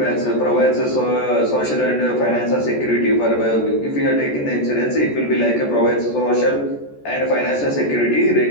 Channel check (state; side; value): late; right; 14 ms